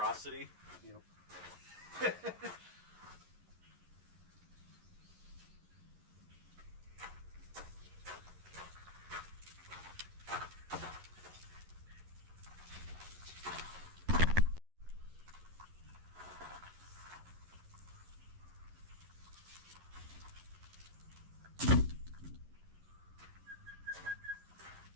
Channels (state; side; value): late; left; 11 ms